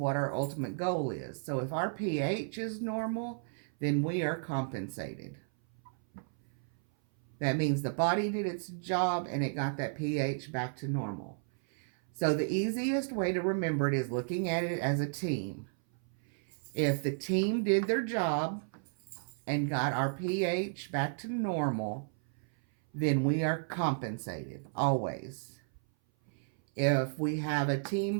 our ultimate goal is. So if our pH is normal, then we are compensated. That means the body did its job and it got that pH back to normal. So the easiest way to remember it is looking at it as a team. If the team did their job and got our pH back to normal, then we are compensated, always. If we have a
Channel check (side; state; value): left; silent; 56 dB below the other